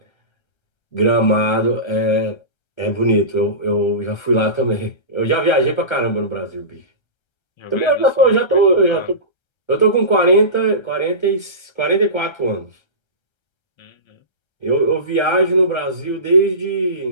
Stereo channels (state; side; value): late; right; 1.3 ms